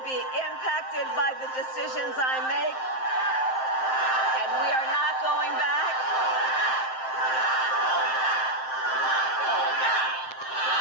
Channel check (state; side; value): late; right; 7.7 ms